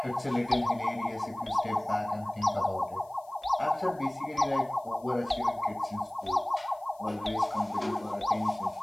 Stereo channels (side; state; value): left; noise; hiss, 29 dB below the sound